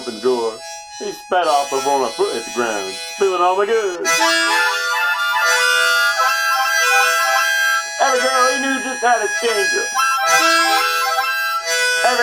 the door. He sped off before my foot hit the ground, spilling all my goods. Every girl he knew just had a changer.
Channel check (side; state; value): both; identical; correlation 1.00